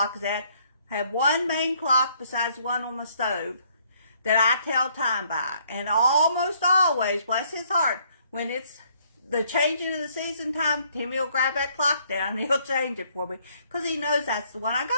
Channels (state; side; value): inverted; both; correlation -0.66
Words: is at, have one main clock besides one on the stove that I tell time by. And almost always, bless his heart, when it's the changing of the season time, Timmy will grab that clock down and he'll change it for me because he knows that's the one I